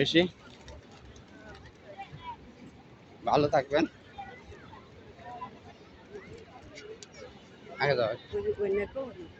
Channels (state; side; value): identical; both; correlation 1.00